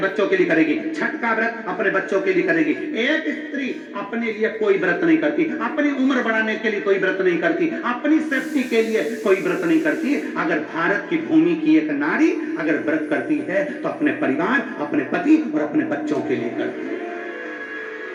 के लिए करेगी, छठ का व्रत अपने बच्चों के लिए करेगी। एक स्त्री अपने लिए कोई व्रत नहीं करती, अपनी उम्र बढ़ाने के लिए कोई व्रत नहीं करती, अपनी सेफ्टी के लिए कोई व्रत नहीं करती। अगर भारत की भूमि की एक नारी अगर व्रत करती है तो अपने परिवार, अपने पति और अपने बच्चों के लिए करती है।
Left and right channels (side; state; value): both; identical; correlation 1.00